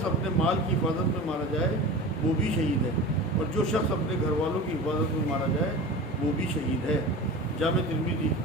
اپنے مال کی حفاظت میں مارا جائے وہ بھی شہید ہے. اور جو شخص اپنے گھر والوں کی حفاظت میں مارا جائے وہ بھی شہید ہے. جامع ترمذی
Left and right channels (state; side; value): normal; both; correlation 0.33